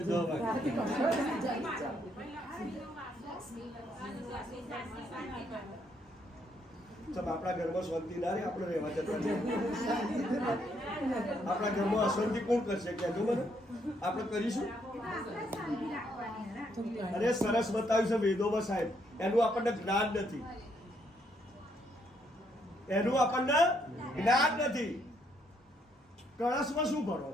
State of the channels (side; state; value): both; normal; correlation 0.72